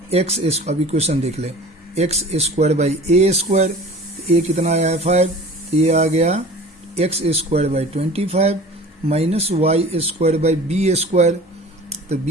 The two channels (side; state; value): both; normal; correlation 0.42